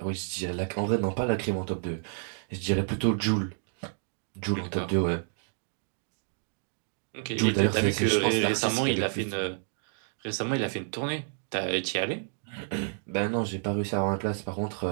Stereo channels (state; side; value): silent; left; digital silence